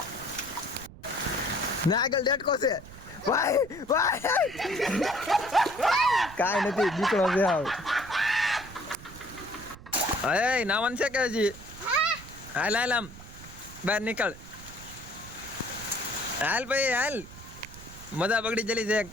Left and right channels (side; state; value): right; noise; rumble, 17 dB below the sound